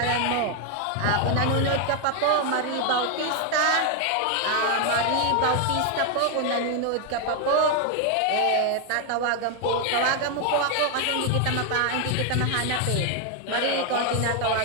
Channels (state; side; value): different; both; correlation 0.00